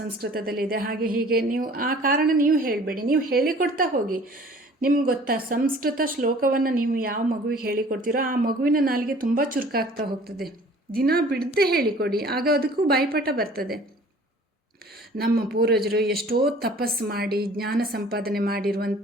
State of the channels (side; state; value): both; normal; correlation 0.50